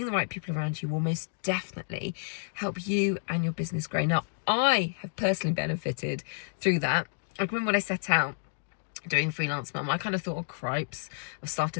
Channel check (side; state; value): right; silent; digital silence